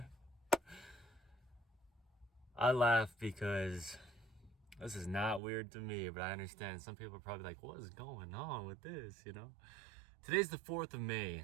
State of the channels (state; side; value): drops out; left; at 5.4 s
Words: I laugh because this is not weird to me, but I understand some people are probably like, what is going on with this, Today's the 4th of May,